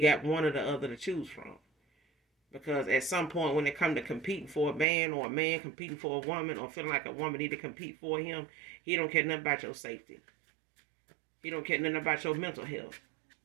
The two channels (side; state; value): left; drops out; at 4.9 s